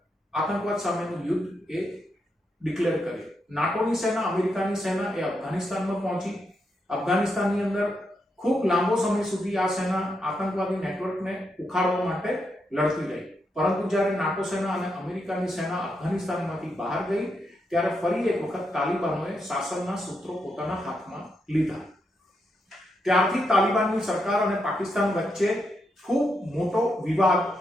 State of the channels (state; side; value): normal; both; correlation 0.82